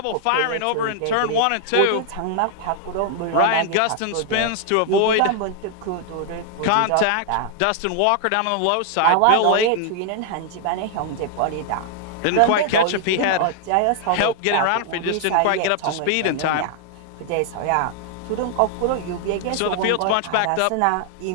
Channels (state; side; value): different; both; correlation 0.00